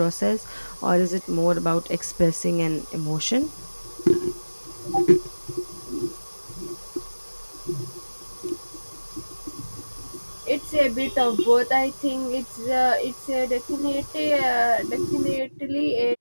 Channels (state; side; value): inverted; both; correlation -1.00